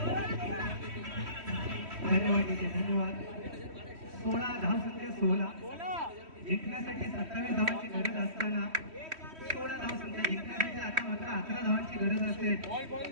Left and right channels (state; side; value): late; left; 3.1 ms